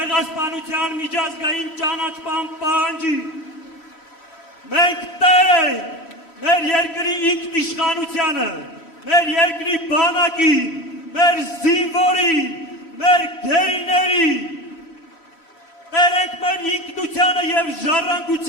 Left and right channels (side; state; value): right; late; 3.0 ms